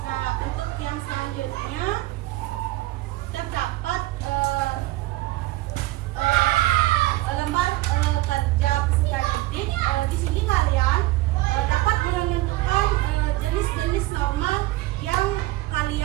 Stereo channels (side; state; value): left; quieter; 18.1 dB